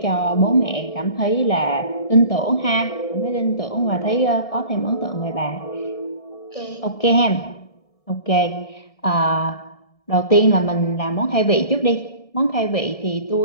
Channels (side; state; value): right; late; 1.7 ms